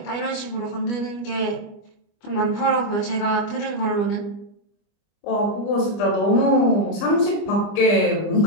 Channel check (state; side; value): late; right; 25 ms